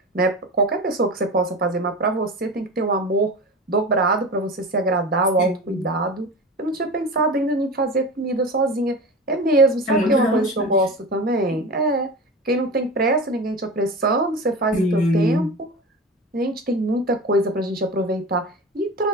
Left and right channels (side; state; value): both; normal; correlation 0.30